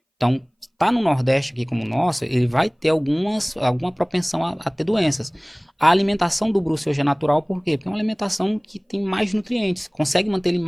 Então, tá no Nordeste aqui como o nosso, ele vai ter alguma propensão a ter doenças. A alimentação do Bruce hoje é natural, por quê? Porque é uma alimentação que tem mais nutrientes, consegue manter ele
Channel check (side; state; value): both; identical; correlation 1.00